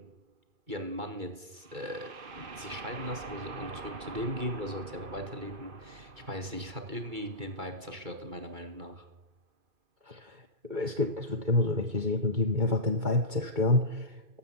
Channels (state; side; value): late; left; 2.3 ms